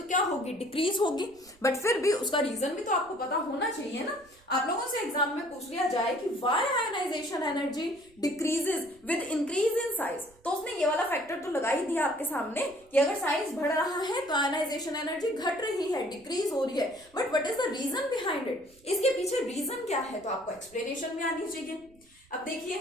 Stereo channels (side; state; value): right; noise; rumble, 29 dB below the sound